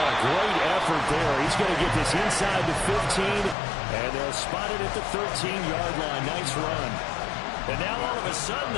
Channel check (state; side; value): drops out; right; at 3.6 s